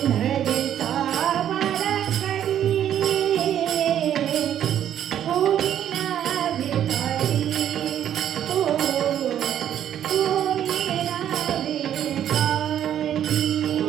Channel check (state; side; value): quieter; left; 10.4 dB